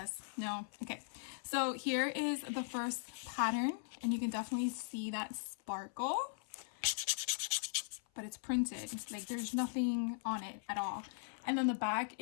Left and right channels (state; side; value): silent; right; 52 dB below the other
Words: no. Okay, so here is the first pattern, and you can definitely see that sparkle. But it's printed, like there's nothing on it at all. And then the back